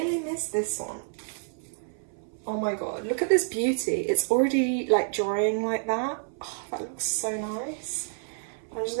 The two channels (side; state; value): left; silent; 58 dB below the other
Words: miss this one? Oh my god, look at this beauty. It's already like drying like that. Oh, that looks so nice. I'm just